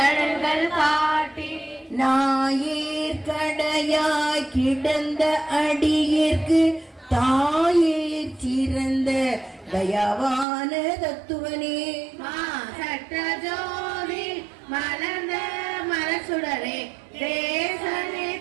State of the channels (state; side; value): drops out; left; at 10.5 s